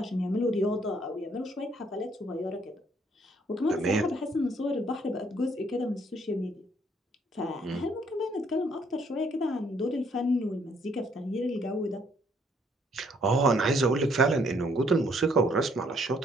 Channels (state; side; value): normal; both; correlation 0.67